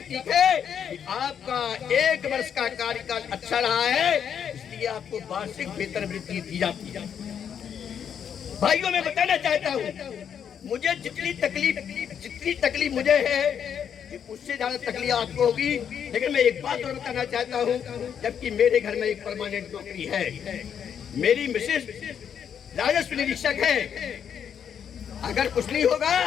है कि आपका 1 वर्ष का कार्यकाल अच्छा रहा है, इसलिए आपको वार्षिक वेतन वृद्धि दी जाती है। भाइयों, मैं बताना चाहता हूँ, मुझे जितनी तकलीफ मुझे है उससे ज्यादा तकलीफ आपको होगी। लेकिन मैं एक बात और बताना चाहता हूँ, जबकि मेरे घर में एक परमानेंट नौकरी है, मेरी मिसेस राजस्व निरीक्षक है। अगर कुछ नहीं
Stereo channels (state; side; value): quieter; right; 8.2 dB